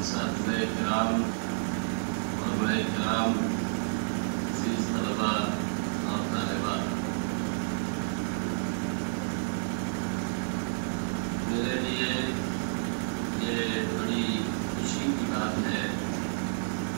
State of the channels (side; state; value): left; silent; digital silence